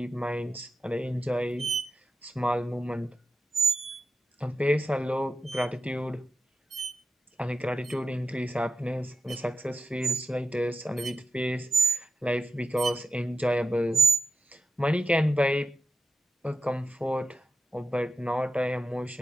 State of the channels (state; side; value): normal; both; correlation 0.87